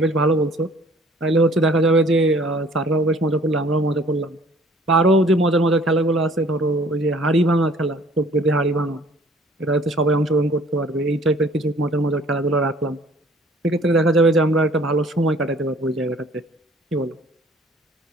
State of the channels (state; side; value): normal; both; correlation 0.55